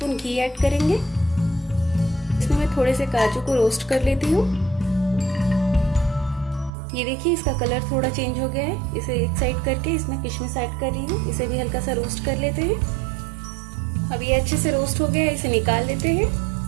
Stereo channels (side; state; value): left; drops out; at 6.7 s